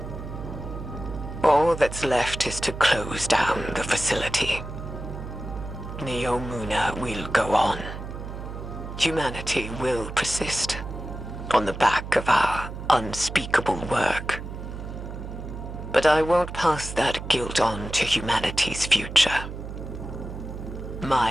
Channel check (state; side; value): noise; right; hum, 9 dB below the sound